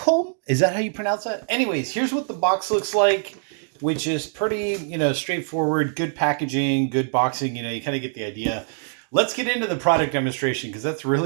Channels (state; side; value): silent; left; digital silence